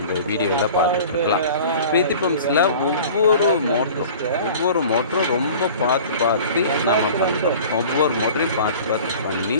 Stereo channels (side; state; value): both; inverted; correlation -0.43